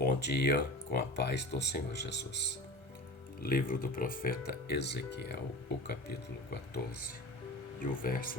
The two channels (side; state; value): right; late; 1.3 ms